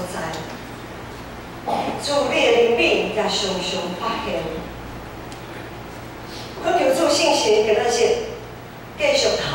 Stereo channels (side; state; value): both; identical; correlation 1.00